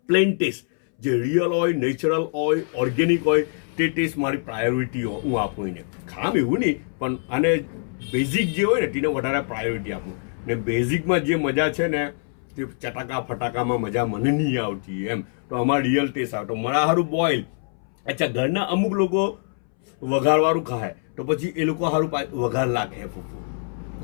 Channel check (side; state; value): right; silent; 62 dB below the other